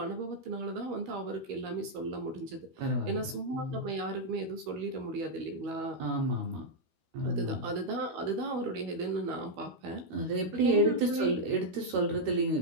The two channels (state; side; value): late; left; 12 ms